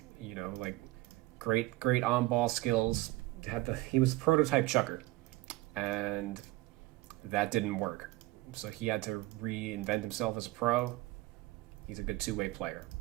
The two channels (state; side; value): quieter; left; 19.3 dB